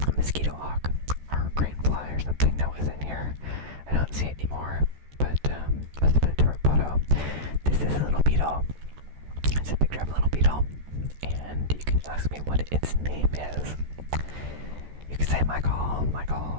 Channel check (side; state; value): left; late; 14 ms